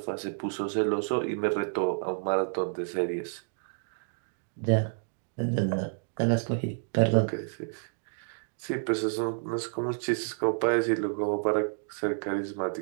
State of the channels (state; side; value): silent; left; digital silence